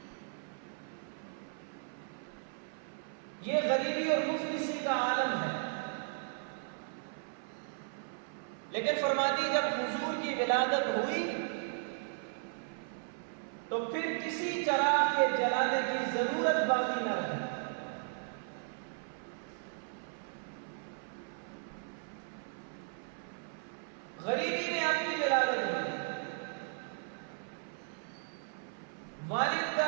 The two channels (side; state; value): left; silent; 54 dB below the other